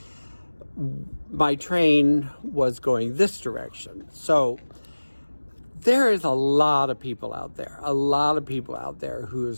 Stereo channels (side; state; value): both; inverted; correlation -1.00